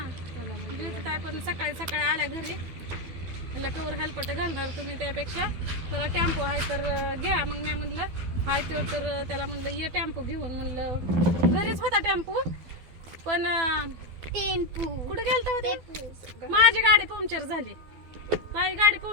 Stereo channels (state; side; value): late; left; 12 ms